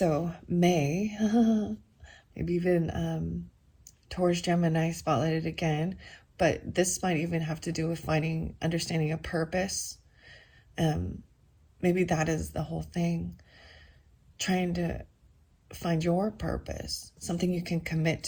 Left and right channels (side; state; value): both; identical; correlation 1.00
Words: May, maybe even Taurus, Gemini spotlighted again. But this might even have to do with understanding a purpose. Maybe that is the whole thing. Trying to find your purpose, something you can commit